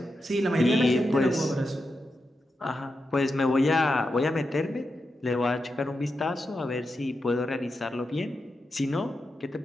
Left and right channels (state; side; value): normal; both; correlation 0.88